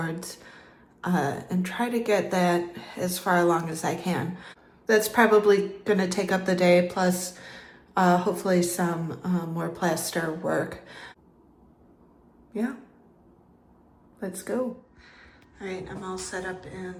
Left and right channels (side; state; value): both; identical; correlation 1.00